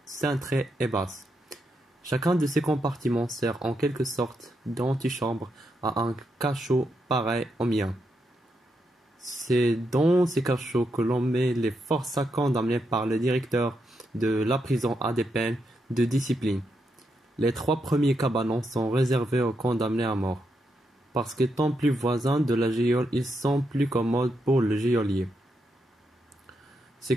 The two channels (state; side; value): normal; both; correlation 0.82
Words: cintrées et basses. Chacun de ces compartiments sert en quelque sorte d'antichambre à un cachot pareil au mien. C'est dans ces cachots que l'on met les forçats condamnés par le directeur de la prison à des peines de discipline. Les 3 premiers cabanons sont réservés aux condamnés à mort, parce qu'étant plus voisins de la geôle, ils sont plus commodes pour le geôlier. Ces